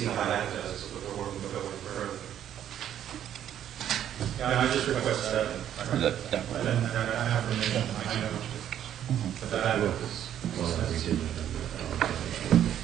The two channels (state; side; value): quieter; left; 10.5 dB